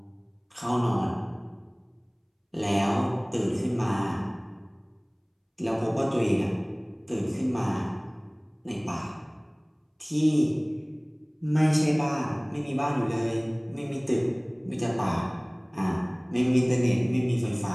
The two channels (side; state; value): both; identical; correlation 1.00